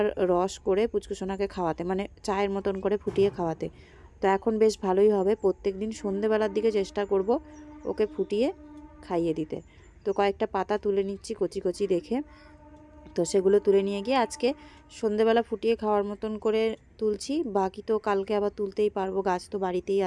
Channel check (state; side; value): identical; both; correlation 1.00